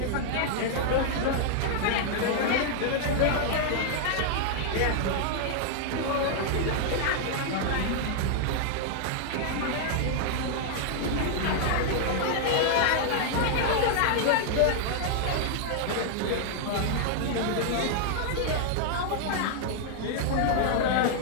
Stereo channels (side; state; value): both; different; correlation 0.00